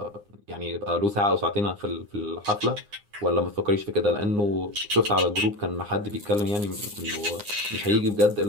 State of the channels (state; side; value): late; left; 9.7 ms